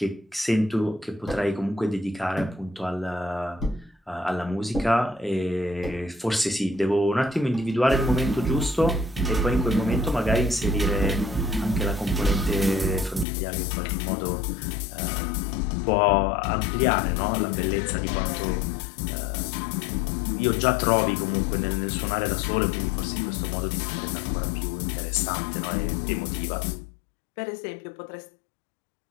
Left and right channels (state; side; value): drops out; right; at 13.2 s